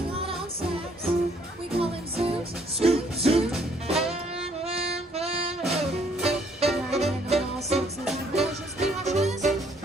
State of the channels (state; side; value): normal; both; correlation 0.65